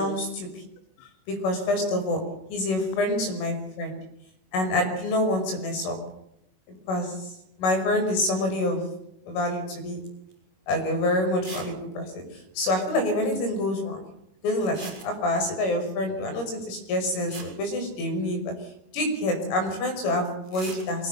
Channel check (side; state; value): right; late; 21 ms